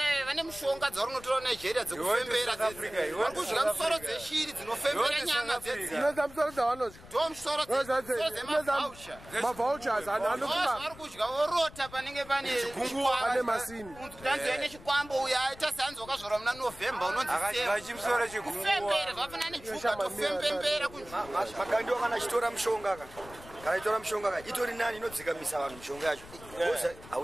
vane mushonga dzarunotora Nigeria dzekufembera dzedzi. Varikudya musoro dzeshiri dzinofembera nyama dzedzi. Inoza musoro dzavanodya. Do musoro dzemavoucher. Mavouchers anokuma. Varikudya vorota panenge pane pane masini. Tanzania nechikwambo uya aita sanzo wakazvora muna November unonzi akadya chimusoro chigungwa. Fembera zvafana nejuka tofembembera kunzvimbo. Makandiwa kana chitora mushonga kana itora mushonga itori nani inodzikamisa vanhu mushonga yacho. Boza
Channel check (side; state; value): left; noise; rumble, 19 dB below the sound